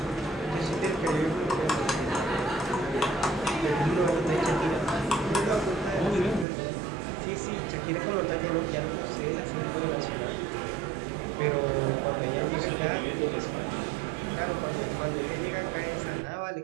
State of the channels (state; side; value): drops out; left; at 6.5 s